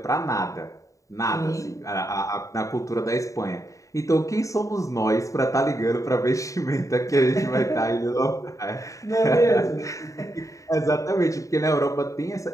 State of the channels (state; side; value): late; right; 0.16 ms